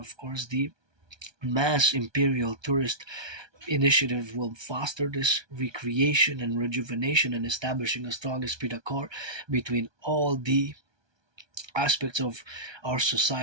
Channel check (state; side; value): late; left; 1.2 ms